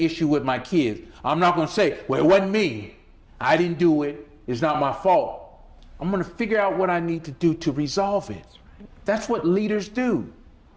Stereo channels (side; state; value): both; identical; correlation 1.00